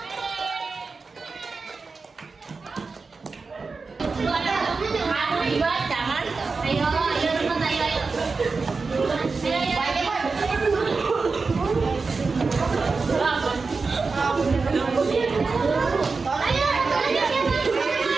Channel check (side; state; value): left; quieter; 4.3 dB